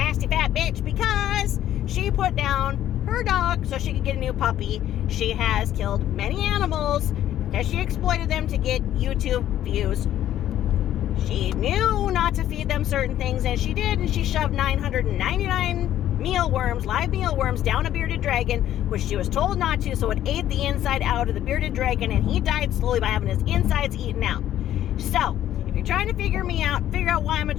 fat bitch because she put down her dog so she could get a new puppy. She has killed many animals because she exploited them to get YouTube views. She knew not to feed them certain things, and she did, and she shoved 999 live mealworms down a bearded dragon, which she was told not to, so it ate the inside out of the bearded dragon, and he died slowly by having his insides eaten out. So, if you're trying to figure out why I'm a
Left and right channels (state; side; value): quieter; right; 12.0 dB